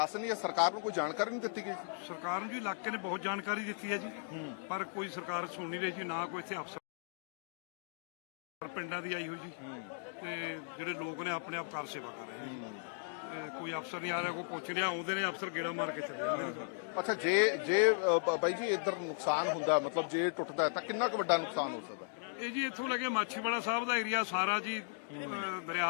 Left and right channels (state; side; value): silent; right; digital silence